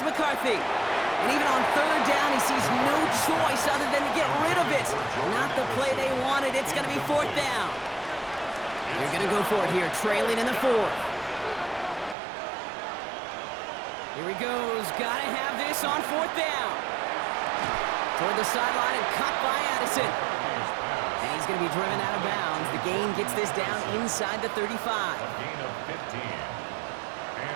McCarthy. And even on 3rd down, he sees no choice other than to get rid of it. Not the play they wanted. It's going to be 4th down. They're going to go for it here, trailing in the 4th. Here he goes. Got to have this on 4th down. Toward the sideline and cut by Addison. And he's going to be driven out of bounds. The gain gets this down inside the 35. A gain of 15.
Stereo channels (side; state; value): left; drops out; at 12.2 s